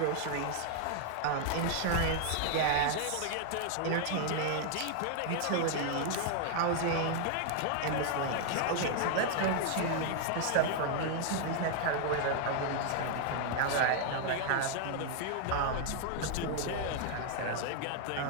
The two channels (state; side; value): different; both; correlation 0.00